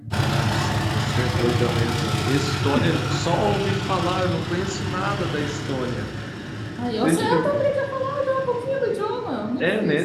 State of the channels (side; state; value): both; identical; correlation 1.00